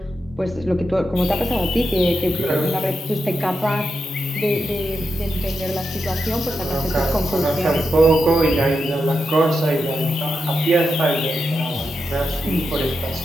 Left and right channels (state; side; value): normal; both; correlation 0.87